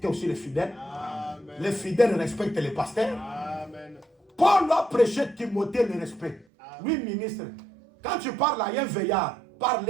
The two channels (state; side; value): drops out; left; at 6.5 s